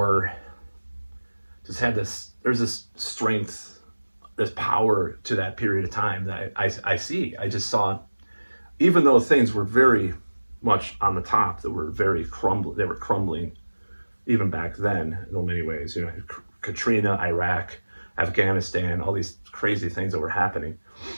just had this, there's this strength, this power to that period of time that I see. I just saw, even though things were very much on the top, they were crumbling even back then in many ways, you know, Katrina, Iraq, Afghanistan, all these crazy things that were happening.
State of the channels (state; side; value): inverted; both; correlation -1.00